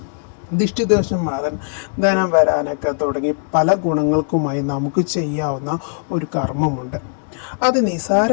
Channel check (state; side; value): silent; right; digital silence